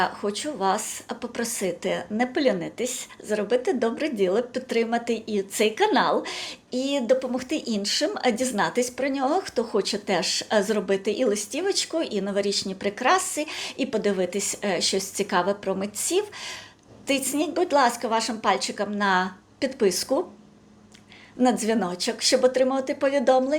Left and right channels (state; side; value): identical; both; correlation 1.00